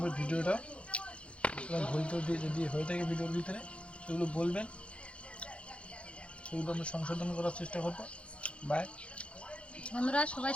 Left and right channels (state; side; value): late; right; 0.060 ms